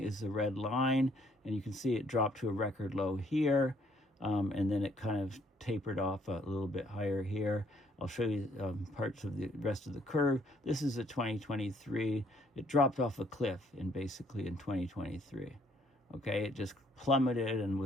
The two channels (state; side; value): normal; both; correlation 0.66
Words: the red line, and you can see it dropped to a record low here, and then it kind of tapered off a little bit higher here. I'll show you parts of the rest of the curve. This is a 2023. It dropped off a cliff basically in 2023. Okay, it just plummeted and